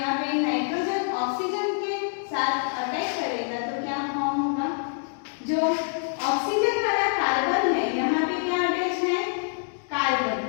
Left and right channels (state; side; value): silent; right; digital silence